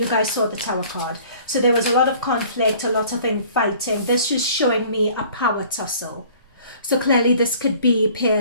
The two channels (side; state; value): both; inverted; correlation -0.52